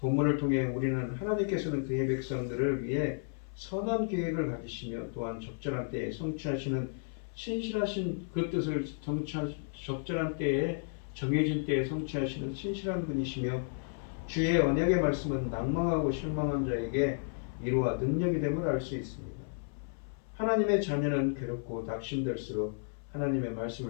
통해 우리는 하나님께서는 그의 백성들을 위해 선한 계획을 가지시며 또한 적절한 때에 성취하시는 신실하신 그 뜻을 적절한 때에 정해진 때에 성취하시는 신실한 분이시며 주의 언약의 말씀은 낭망하고 실망한 자에게 위로와 능력이 됨을 알 수 있습니다. 하나님의 자녀는 괴롭고 낙심될수록 하나님의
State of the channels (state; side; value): silent; right; 56 dB below the other